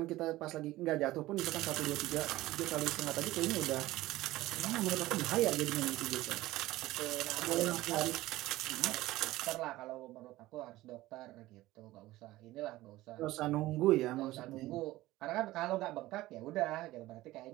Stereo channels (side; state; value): left; quieter; 17.2 dB